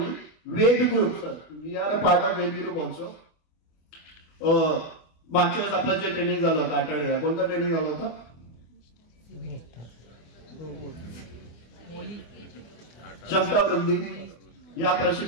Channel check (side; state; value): right; late; 24 ms